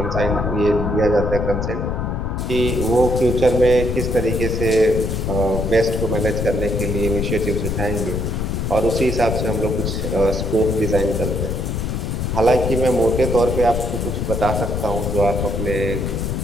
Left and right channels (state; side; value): noise; left; rumble, 1 dB below the sound